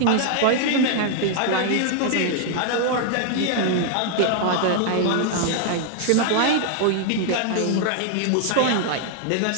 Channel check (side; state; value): both; different; correlation 0.00